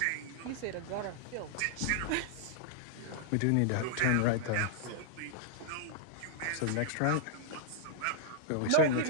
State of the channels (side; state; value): both; different; correlation -0.01